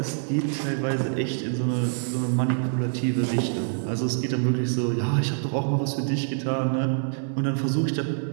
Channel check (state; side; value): silent; left; digital silence